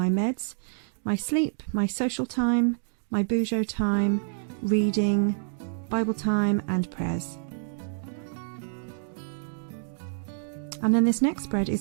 meds, my sleep, my social time, my Bujo time, reading, Bible time and prayers. And then this next spread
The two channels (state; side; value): silent; left; digital silence